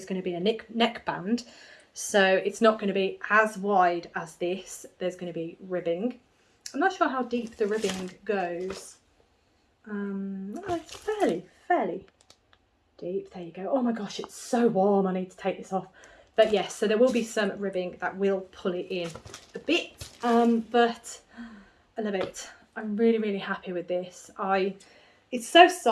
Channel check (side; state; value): both; identical; correlation 1.00